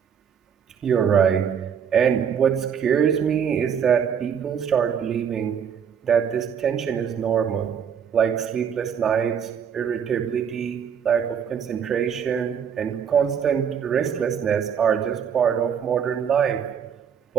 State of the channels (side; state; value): left; quieter; 7.7 dB